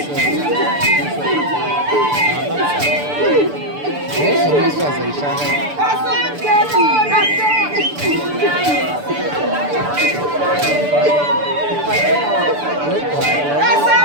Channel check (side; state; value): left; late; 6.9 ms